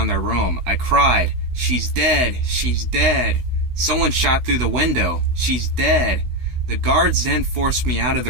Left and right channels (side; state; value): left; late; 16 ms